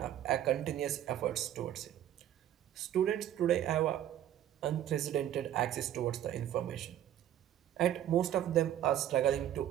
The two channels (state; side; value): quieter; left; 11.4 dB